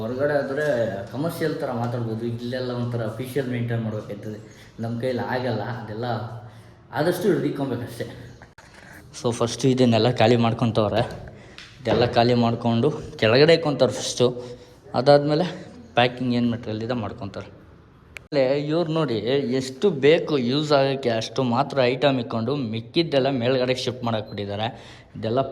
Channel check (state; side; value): identical; both; correlation 1.00